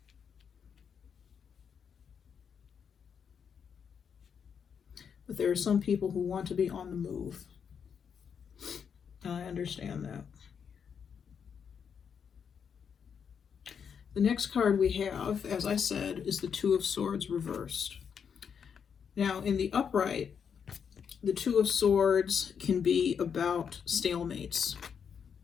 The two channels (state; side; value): quieter; right; 7.1 dB